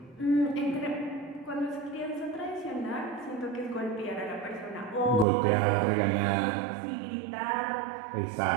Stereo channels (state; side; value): drops out; left; at 5.2 s